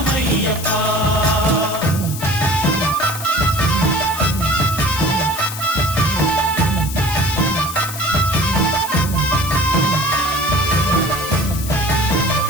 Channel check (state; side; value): noise; left; hiss, 10 dB below the sound